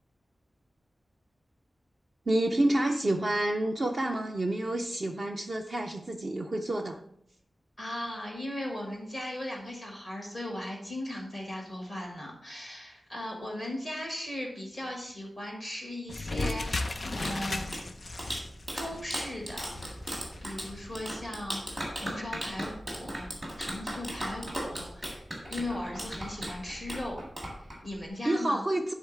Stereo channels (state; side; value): normal; both; correlation 0.94